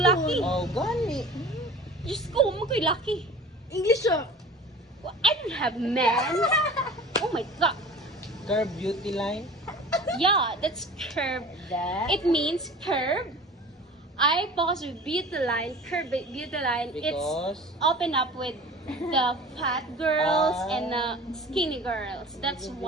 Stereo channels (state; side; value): normal; both; correlation 0.40